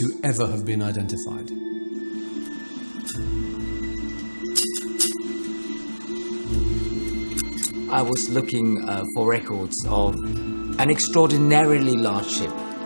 ever have been identified. I was looking for records of an extraordinarily large ship.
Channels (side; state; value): both; inverted; correlation -1.00